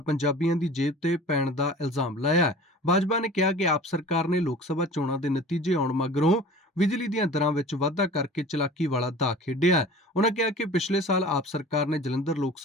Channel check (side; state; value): both; normal; correlation 0.41